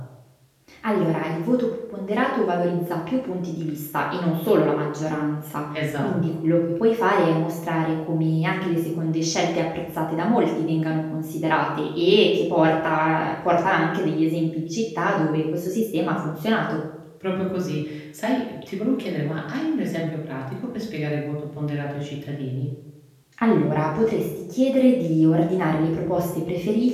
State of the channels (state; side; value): identical; both; correlation 1.00